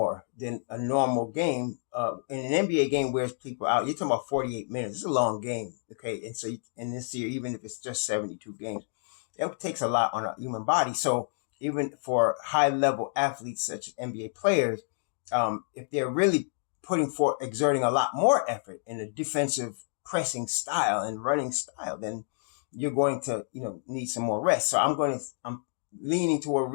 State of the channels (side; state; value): right; silent; digital silence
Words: than a normal game. In an NBA game wears people out. You're talking about 48 minutes. It's a long game. Okay. And so in this year, even if it's just 72 games, it takes a lot on a human body. So even for high level athletes such as NBA players, if they're really exerting a lot more effort in a defensive pressing style and running style, then you're going to, need some more rest. So I'm leaning toward